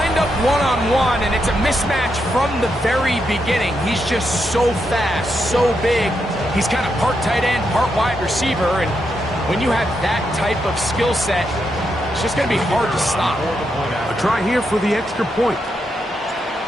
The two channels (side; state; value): both; normal; correlation 0.82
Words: up one-on-one, and it's a mismatch from the very beginning. He's just so fast, so big. He's kind of part tight end, part wide receiver, and when you have that type of skill set, it's just going to be hard to stop. A try here for the extra point.